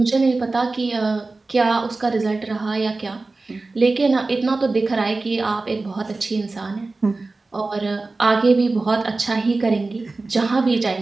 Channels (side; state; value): left; quieter; 3.5 dB